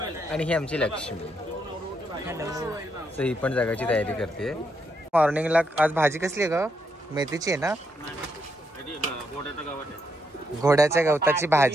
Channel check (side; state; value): both; normal; correlation 0.78